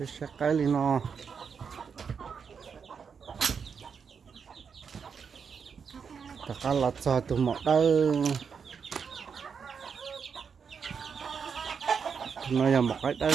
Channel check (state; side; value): quieter; left; 6.3 dB